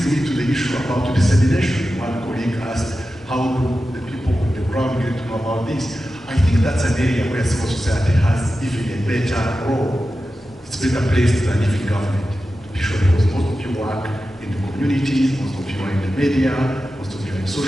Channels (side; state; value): both; normal; correlation 0.92